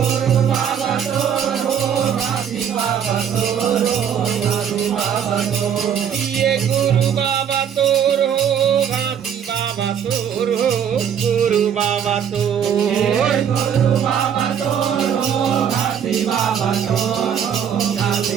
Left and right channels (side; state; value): left; quieter; 8.4 dB